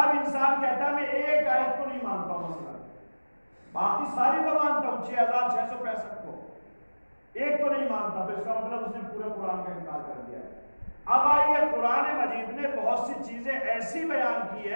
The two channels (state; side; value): inverted; both; correlation -1.00